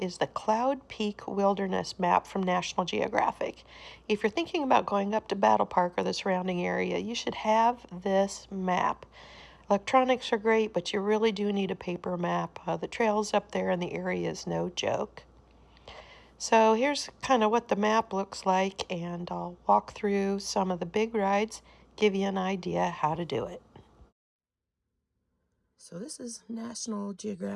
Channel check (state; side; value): identical; both; correlation 1.00